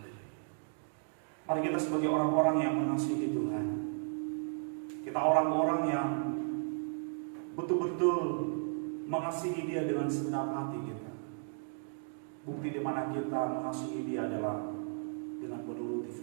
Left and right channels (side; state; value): left; silent; 55 dB below the other